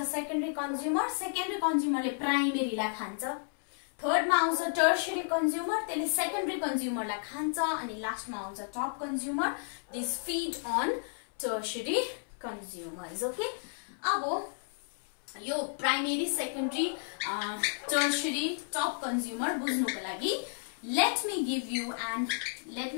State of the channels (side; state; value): right; silent; 56 dB below the other